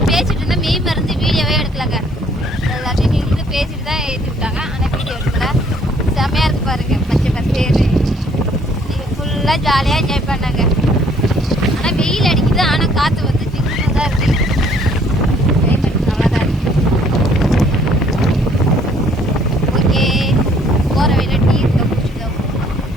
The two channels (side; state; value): both; normal; correlation 0.61